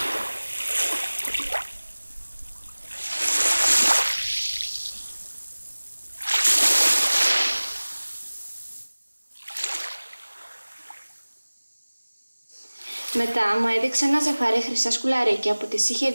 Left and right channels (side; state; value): both; inverted; correlation -1.00